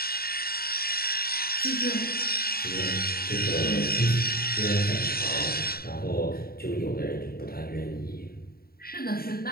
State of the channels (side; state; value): right; late; 0.44 ms